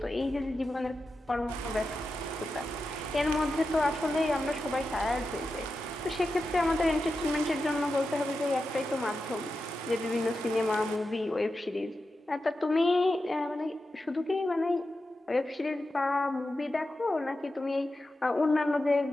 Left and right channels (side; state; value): both; normal; correlation 0.90